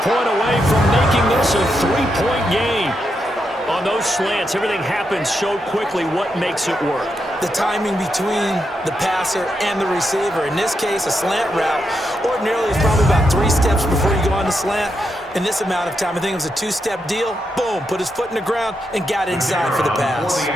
away from making this a 3-point game. On those slants, everything happens so quickly. What makes it work? The timing between the passer and the receiver. In this case, a slant route ordinarily is probably about 3 steps before you go on the slant. In this amount of time, I think it was a 2-step deal. Boom, put his foot in the ground and got inside for the pass.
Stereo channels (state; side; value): normal; both; correlation 0.83